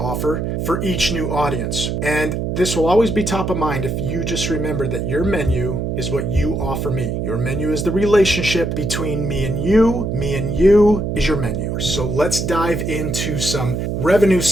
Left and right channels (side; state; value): right; noise; hum, 2 dB below the sound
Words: for each new audience. And this will always be top of mind if you just remember that your menu is what you offer me. Your menu is the relationship between me and you. Me and you is your menu. So let's dive into some revenue